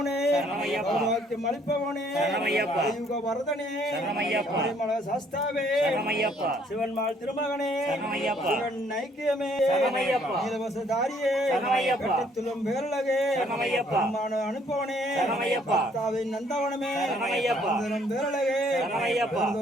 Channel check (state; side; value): normal; both; correlation 0.64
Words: வாக்கியம் அளிப்பவனே யுக வரதனே மல சாஸ்தாவே சிவன்மாள் திருமகனே சிவன் ஐக்கியமே நீலவசதாரியே கட்டித்துள்ளும் பேரழகே அனுப்பவனே பக்தாவின் நந்தவனமே பேரழகே